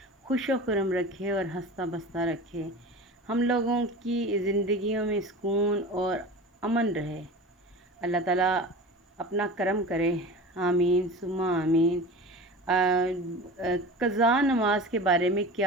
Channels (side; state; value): both; normal; correlation 0.34